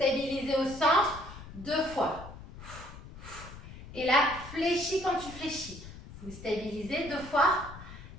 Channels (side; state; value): left; noise; rumble, 15 dB below the sound